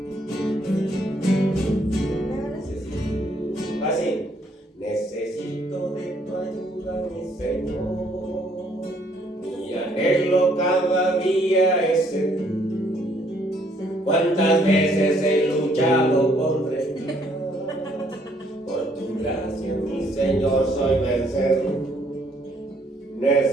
Así. Necesito de tu ayuda, mi Señor. ¿Cuántas veces he luchado contra el mal? Por tu gracia, mi Señor, soy vencedor.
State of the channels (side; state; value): both; normal; correlation 0.66